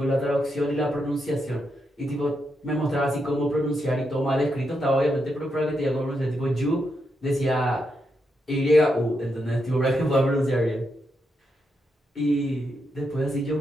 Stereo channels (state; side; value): normal; both; correlation 0.83